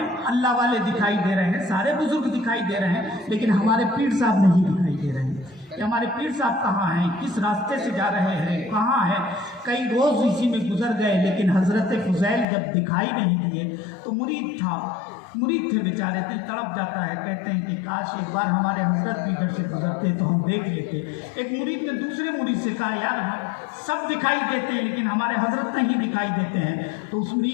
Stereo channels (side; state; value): right; drops out; at 12.5 s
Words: अल्लाह वाले दिखाई दे रहे हैं, सारे बुजुर्ग दिखाई दे रहे हैं, लेकिन हमारे पीर साहब नहीं दिखाई दे रहे हैं कि हमारे पीर साहब कहाँ हैं, किस रास्ते से जा रहे हैं, कहाँ हैं। कई रोज़ इसी में गुजर गए, लेकिन हज़रत फ़ुज़ैल जब दिखाई नहीं दिए तो मुरीद थे बेचारे, दिल तड़प जाता है। कहते हैं कि काश एक बार हमारे हज़रत भी इधर से गुजरते तो हम देख लेते। एक मुरीद ने दूसरे मुरीद से कहा यार हम सब दिखाई देते हैं लेकिन हमारे हज़रत नहीं दिखाई देते हैं। तो उस